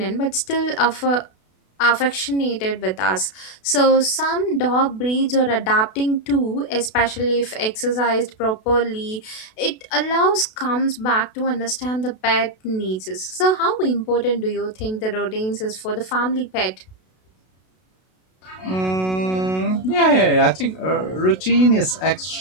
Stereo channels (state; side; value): late; right; 32 ms